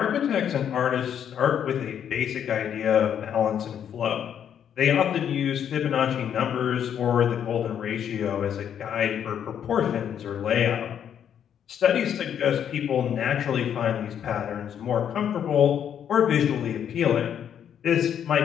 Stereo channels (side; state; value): right; quieter; 9.0 dB